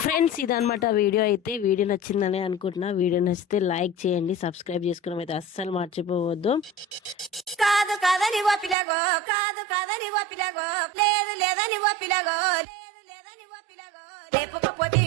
ఫ్రెండ్స్ ఇదనమాట వీడియో అయితే. వీడియో నచ్చిందని అనుకుంటున్నా. వీడియో నచ్చితే లైక్ చేయండి, సబ్స్క్రైబ్ చేసుకోవడం అయితే అస్సలు మర్చిపోవద్దు. కాదు కాదని ఓ పిల్లగో, కాదు కాదని ఓ పిల్లగో, లేదు లేదని ఓ పిల్లగో, లేదు లేదని ఓ పిల్లగో, లేపకపోతే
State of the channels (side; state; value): left; drops out; at 8.8 s